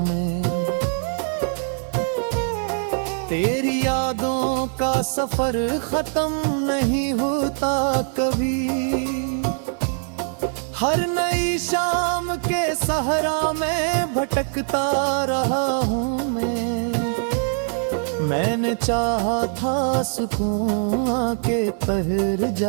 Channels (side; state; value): left; silent; digital silence